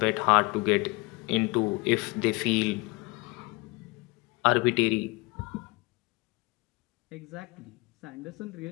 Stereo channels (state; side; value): quieter; right; 25.2 dB